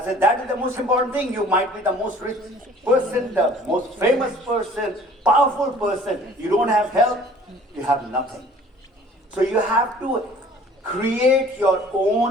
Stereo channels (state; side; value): normal; both; correlation 0.51